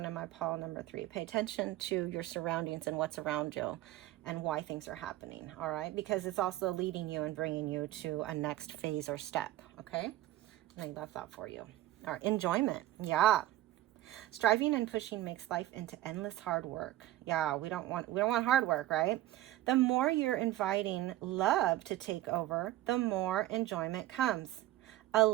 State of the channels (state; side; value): quieter; left; 15.1 dB